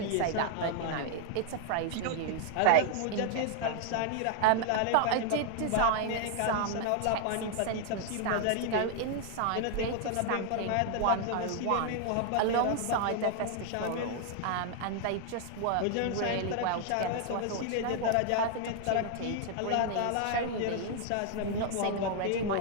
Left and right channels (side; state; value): both; different; correlation 0.00